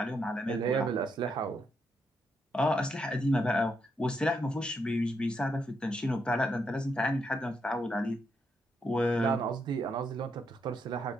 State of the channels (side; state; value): both; normal; correlation 0.79